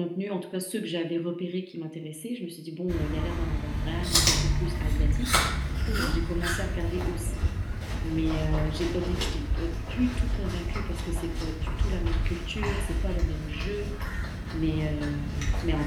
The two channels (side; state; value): both; identical; correlation 1.00